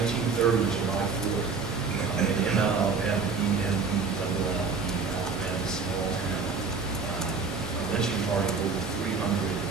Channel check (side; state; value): left; quieter; 5.0 dB